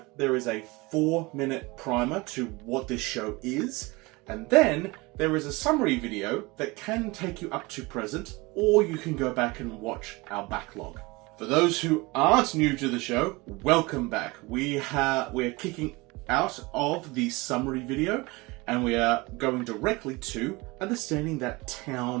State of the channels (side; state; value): left; quieter; 23.9 dB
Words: there is a 4-minute primer to what this show is, and then there is a summary video that can take you up to present, or you can go back and watch our backlog. For those who aren't new to the show, welcome back. We're kicking out of the summary video, and we are going directly to understanding that